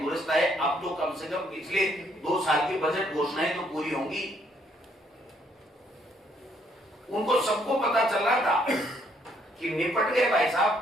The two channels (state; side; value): normal; both; correlation 0.69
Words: आए। अब तो कम से कम पिछले 2 साल की बजट घोषणाएं तो पूरी होंगी। उनको सबको पता चल रहा था कि निपट गए भाई